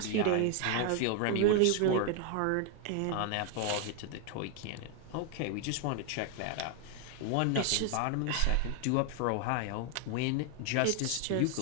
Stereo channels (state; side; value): different; both; correlation 0.01